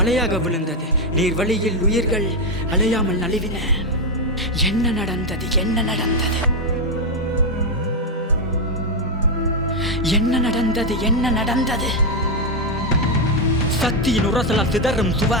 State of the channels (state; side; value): normal; both; correlation 0.04